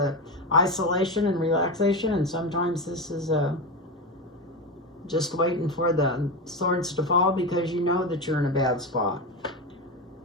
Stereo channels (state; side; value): normal; both; correlation 0.18